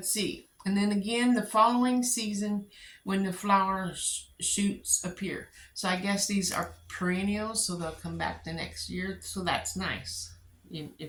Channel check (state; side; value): identical; both; correlation 1.00